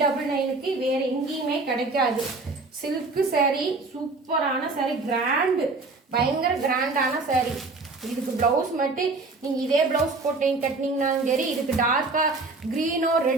வேறு எங்கேயுமே கிடைக்காது. சில்க்கு சேரீ, சூப்பரான சேரீ, கிராண்டு, பயங்கர கிராண்டான சேரீ. இதுக்கு ப்ளவுஸ் மட்டும் நீங்கள் இதே ப்ளவுஸ் போட்டு கட்டினீங்கன்னாலும் சரி, இதுக்கு டார்க்காக க்ரீனோ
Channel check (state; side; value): quieter; left; 3.6 dB